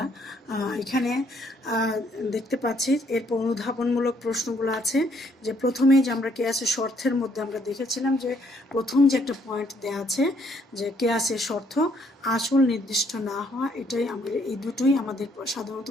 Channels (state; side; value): normal; both; correlation 0.68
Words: এখানে দেখতে পাচ্ছি এরপর অনুধাবনমূলক প্রশ্নগুলো আছে, যে প্রথমেই যে আমরা কিয়াসের শর্তের মধ্যে আমরা দেখেছিলাম যে প্রথম যে একটা পয়েন্ট দেওয়া আছে, যে কিয়াসের শর্ত আসল নির্দিষ্ট না হওয়া, এই দুটোই আমাদের সাধারণত